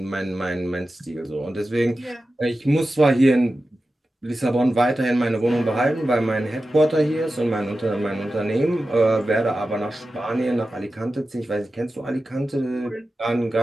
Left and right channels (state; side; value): normal; both; correlation 0.93